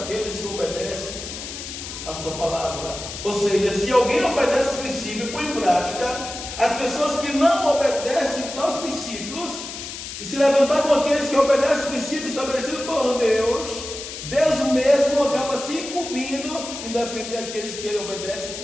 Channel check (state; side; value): noise; left; hiss, 9 dB below the sound